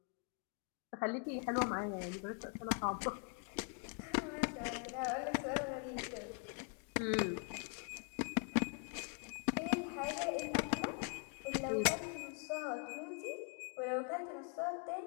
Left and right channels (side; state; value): right; quieter; 39.3 dB